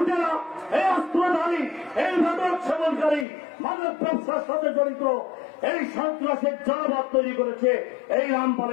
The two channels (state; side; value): drops out; right; at 3.2 s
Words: এই অস্ত্রধারী, এই মাদক সেবনকারী, মাদক ব্যবসার সাথে জড়িত এই সন্ত্রাসের জনপদ তৈরি করেছে এই